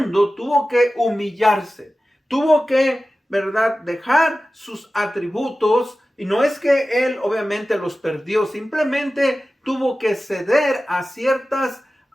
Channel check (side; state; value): both; normal; correlation 0.95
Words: tuvo que humillarse, tuvo que ¿verdad?, dejar sus atributos. Y no es que él obviamente los perdió, simplemente tuvo que ceder a ciertas